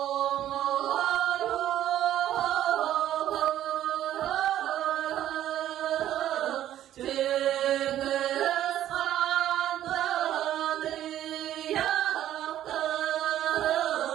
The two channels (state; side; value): quieter; left; 12.1 dB